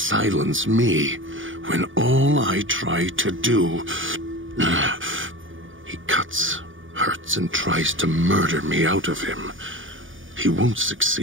me, when all I try to do... He cuts, hurts, and tries to murder me out of him. He won't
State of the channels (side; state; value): left; late; 0.57 ms